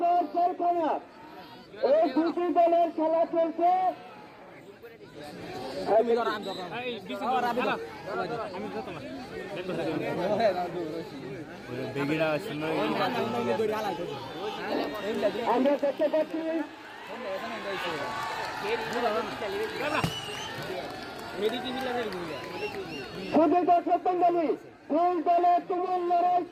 এই দুটি দলের খেলা চলছে। আমরা দেখতে পাচ্ছি শুধু দর্শক মন্ডলী, দুই দলের তুমুল লড়াই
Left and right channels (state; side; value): identical; both; correlation 1.00